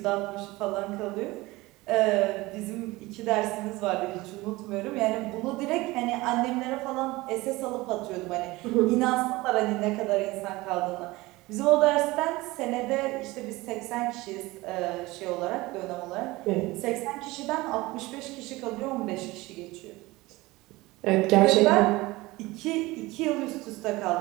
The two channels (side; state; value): left; quieter; 20.7 dB